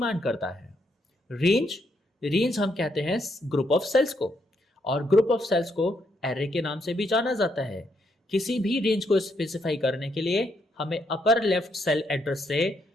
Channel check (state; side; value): normal; both; correlation 0.76